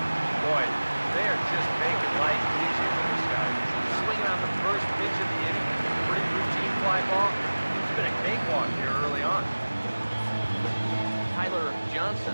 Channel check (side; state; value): both; inverted; correlation -1.00